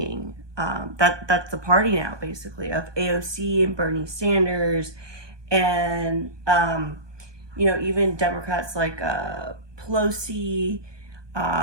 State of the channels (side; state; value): left; late; 1.2 ms